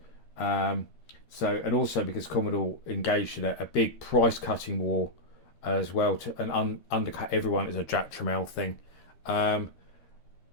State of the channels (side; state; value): right; late; 12 ms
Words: And also because Commodore engaged in a big price-cutting war as well and undercut everyone as a Jack Tramiel thing.